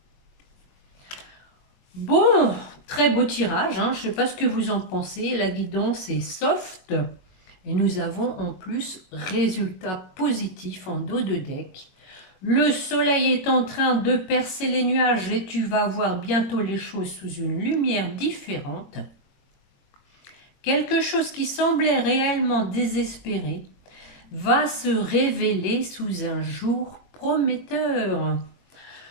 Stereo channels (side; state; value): right; late; 22 ms